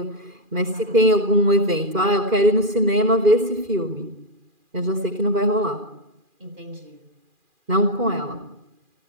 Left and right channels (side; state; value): left; late; 2.4 ms